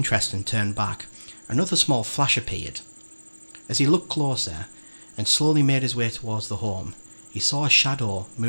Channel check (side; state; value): both; inverted; correlation -1.00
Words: and turn back, another small flash appeared. As he looked closer and slowly made his way towards the home, he saw a shadow